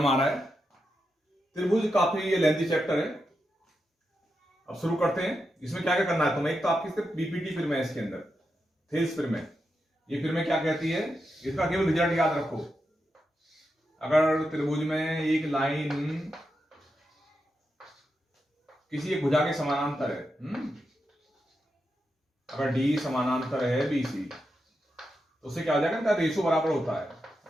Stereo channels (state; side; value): normal; both; correlation 0.87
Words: आ रहा है। त्रिभुज काफी लेंथी चैप्टर है। अब शुरू करते हैं। इसमें क्या क्या करना है तुम्हें, एक तो आपकी सिर्फ बीपीटी फिल्म है इसके अंदर, थेल्स फिल्म है। ये फिल्में क्या कहती है, इसका केवल रिजल्ट याद रखो। अगर त्रिभुज में एक लाइन किसी एक भुजा के समानांतर है, अगर डी समानांतर है बीसी, तो उससे क्या हो जाएगा, रेशो बराबर होता है